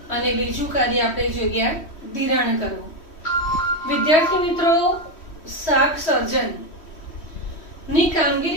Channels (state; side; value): late; right; 3.1 ms